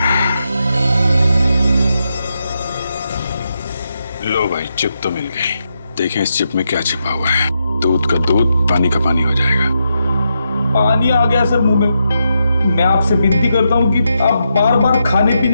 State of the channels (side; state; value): both; inverted; correlation -0.84